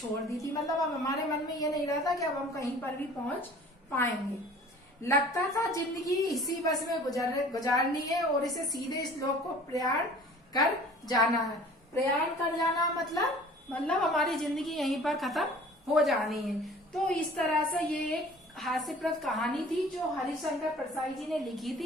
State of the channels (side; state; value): both; normal; correlation 0.47